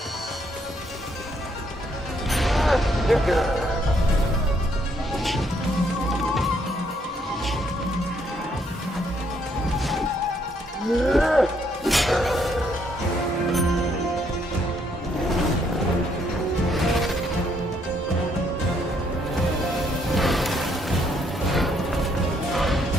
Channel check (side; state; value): both; normal; correlation 0.71